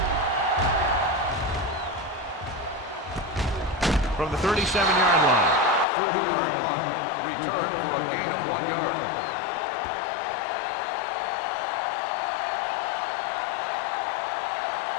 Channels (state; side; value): drops out; right; at 5.9 s